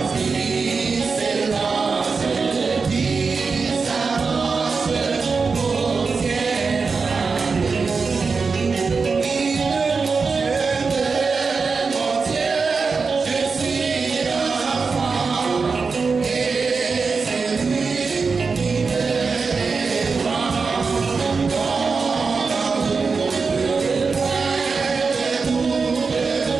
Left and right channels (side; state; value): left; quieter; 4.8 dB